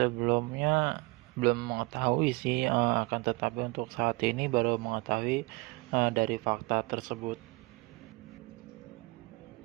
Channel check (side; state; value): left; quieter; 25.2 dB